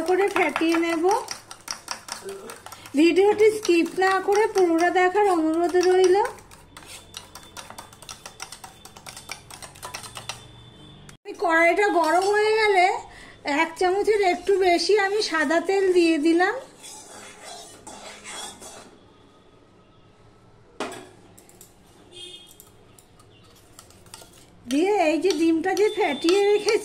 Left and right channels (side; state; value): both; identical; correlation 1.00